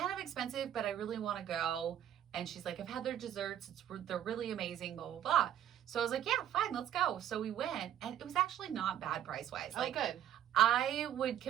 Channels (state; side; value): quieter; left; 10.6 dB